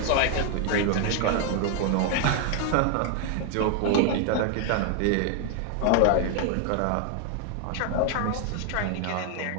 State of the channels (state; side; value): different; both; correlation 0.00